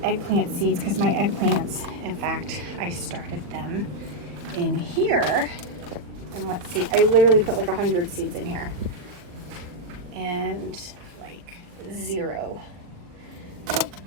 eggplant seeds because my eggplants, in fact, I started them in here, and let's see, I literally put like 100 seeds in here and like 0.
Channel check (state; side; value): late; left; 40 ms